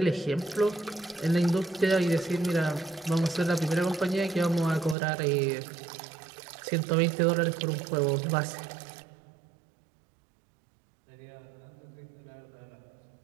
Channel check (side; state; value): left; drops out; at 5.0 s